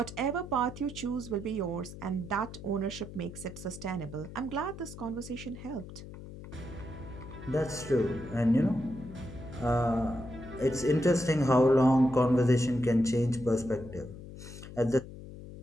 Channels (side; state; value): left; noise; hum, 13 dB below the sound